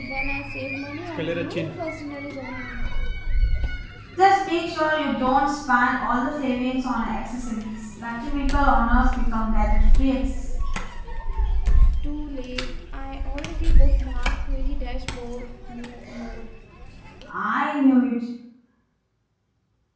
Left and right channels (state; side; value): identical; both; correlation 1.00